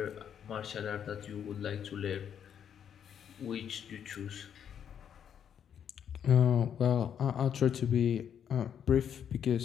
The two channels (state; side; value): quieter; right; 8.6 dB